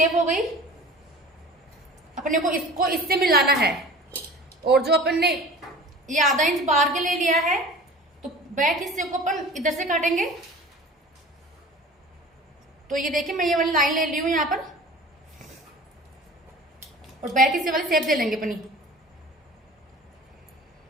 हो गई। अपने को इसको इससे मिलाना है। और जो अपन ने ये 1/2 इंच बाहर के ले लिया है, तो बैक हिस्से को अपन इधर से काटेंगे। तो ये देखिए, मैं ये वाली लाइन ले ली हूं यहां पर, और बैक हिस्से वाली शेप दे लेंगे अपनी।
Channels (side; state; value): both; normal; correlation 0.41